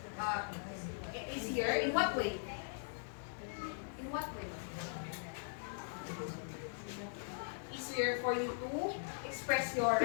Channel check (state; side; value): silent; right; 51 dB below the other